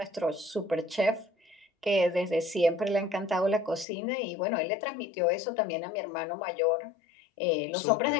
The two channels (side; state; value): right; drops out; at 3.9 s